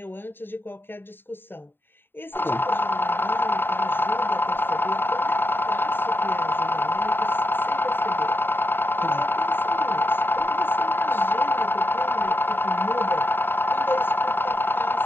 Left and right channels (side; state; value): right; late; 0.099 ms